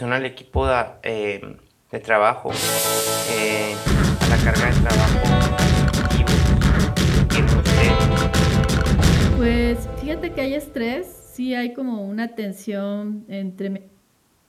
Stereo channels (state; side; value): identical; both; correlation 1.00